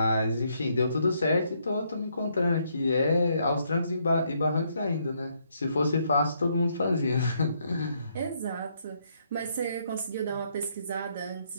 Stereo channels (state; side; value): inverted; both; correlation -0.72